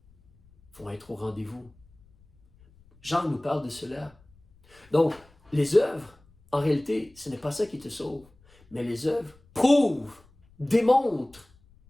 vont être au rendez-vous. Jean nous parle de cela. Donc, les œuvres, en réalité, ce n'est pas ça qui te sauve, mais les œuvres prouvent, démontrent,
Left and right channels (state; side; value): noise; left; rumble, 29 dB below the sound